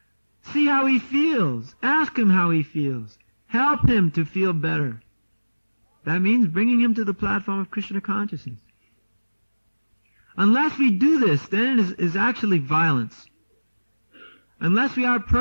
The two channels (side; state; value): both; inverted; correlation -1.00